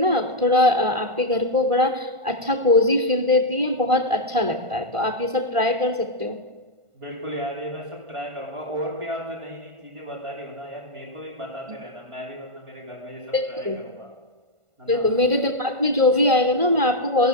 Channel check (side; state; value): left; late; 1.5 ms